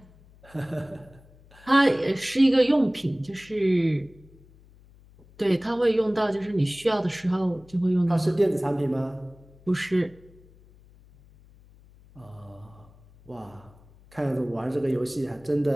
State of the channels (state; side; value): noise; left; hum, 26 dB below the sound